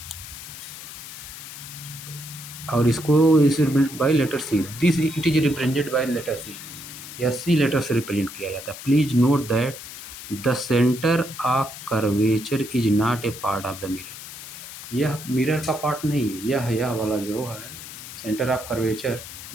और इसको इस by letter C, this it is represented by letter C, या सी लेटर से रिप्रेजेंट किया जाता है। Please note that the centre of curvature is not a part of the mirror. यह मिरर का पार्ट नहीं है। यह वाला जो है सेंटर ऑफ कर्वेचर,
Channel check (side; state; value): left; noise; hiss, 12 dB below the sound